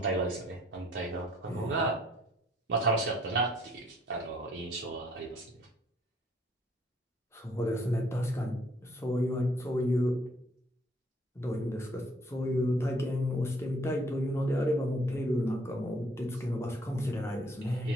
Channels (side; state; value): both; normal; correlation 0.63